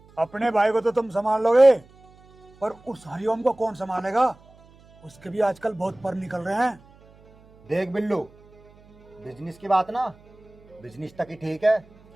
अपने भाई को तो तुम संभाल लोगे, पर उस हरिओम को कौन संभालेगा? उसके भी आजकल बहुत पर निकल रहे हैं। देख बिल्लू, बिजनेस की बात ना बिजनेस तक ही ठीक है,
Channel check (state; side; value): noise; right; hum, 27 dB below the sound